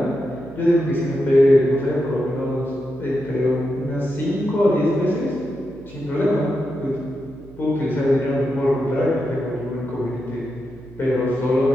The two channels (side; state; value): right; noise; hum, 21 dB below the sound